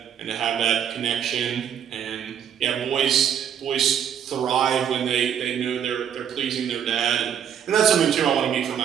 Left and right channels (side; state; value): left; quieter; 8.7 dB